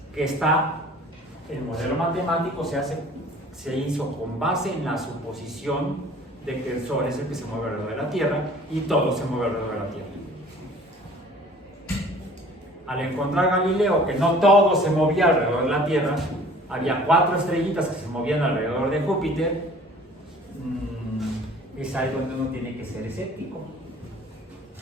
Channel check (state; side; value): normal; both; correlation 0.49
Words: que el modelo matemático se hizo con base en la suposición de que el Sol es el que se mueve alrededor de la Tierra y todo se mueve alrededor de la Tierra. Al encontrar Galileo que no todo se movía alrededor de la Tierra, había 4 estrellitas que se movían alrededor de Júpiter, es ahí donde uno tiene que ser escéptico.